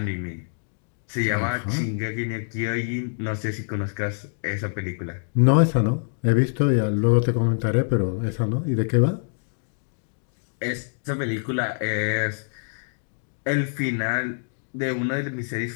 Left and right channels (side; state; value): right; silent; digital silence